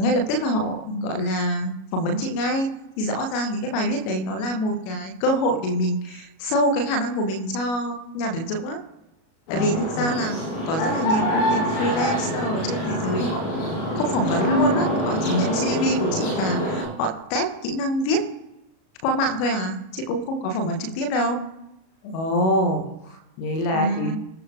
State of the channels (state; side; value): late; right; 37 ms